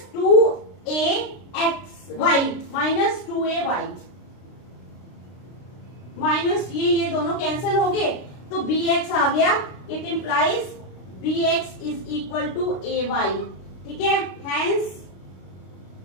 2ax Y, minus 2ay, minus ये दोनों कैंसिल हो गए तो bx आ गया। It implies bx is equal to ay, ठीक है, हैंस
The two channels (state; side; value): late; right; 32 ms